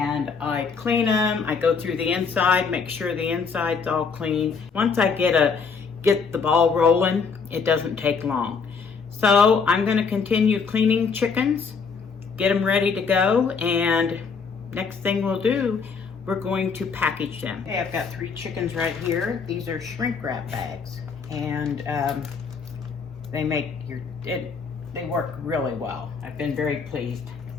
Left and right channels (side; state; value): right; quieter; 5.4 dB